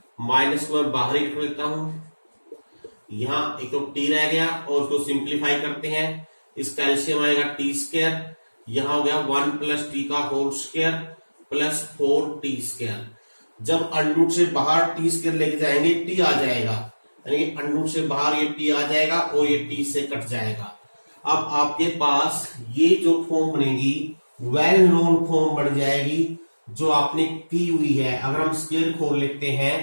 माइनस को मैं बाहर ही रख लेता हूं, यहां एक तो टी रह गया और उसको सिंप्लीफाई करते हैं, इसका एलसीएम आएगा टी स्क्वायर, यहां हो गया 1 प्लस टी का whole square plus 4t square. जब अंडरूट से बाहर टी स्क्वायर लेके जाएंगे टी आ जाएगा, यानी कि अंडरूट से बाहर ये टी आ जाएगा और ये टी से कट जाएगा। अब आपके पास ये जो फॉर्म बनेगी वेल नोन फॉर्म बन जाएगी जो आपने की हुई है। अगर हम स्क्वायर खोल लेते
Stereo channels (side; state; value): both; inverted; correlation -1.00